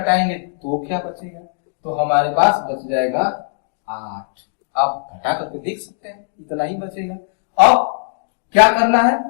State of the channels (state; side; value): silent; right; digital silence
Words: तो क्या बचेगा, तो हमारे पास बच जाएगा 8। आप घटा करके देख सकते हैं, इतना ही बचेगा। अब क्या करना है,